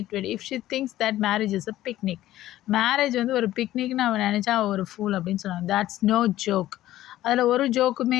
If she thinks that marriage is a picnic, marriage வந்து ஒரு பிக்னிக்னு அவன் நினச்சா அவள் ஒரு ஃபூல் அப்படின்னு சொன்னாங்க. That's no joke. அதில் ஒரு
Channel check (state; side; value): quieter; right; 14.4 dB